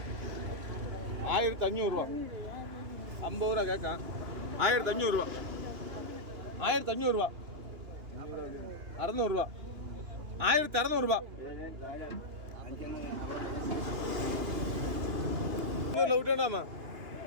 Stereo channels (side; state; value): left; late; 2.8 ms